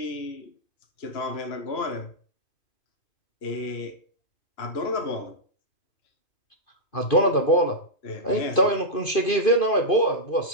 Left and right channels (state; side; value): late; right; 2.5 ms